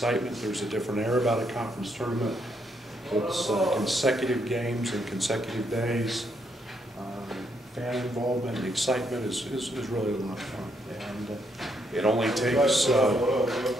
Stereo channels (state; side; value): normal; both; correlation 0.76